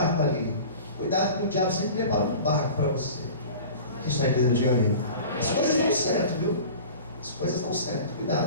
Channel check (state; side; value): inverted; both; correlation -0.39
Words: ali. Cuidado que o diabo sempre prepara um barco para você. Quem está entendendo, diga amém. As coisas dão certo, viu? As coisas dão certo,